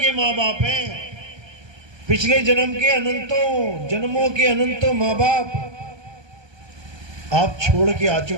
माँ बाप हैं। पिछले जन्म के अनंतों जन्मों के अनंतों माँ बाप आप छोड़ के आ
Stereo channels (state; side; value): late; left; 1.2 ms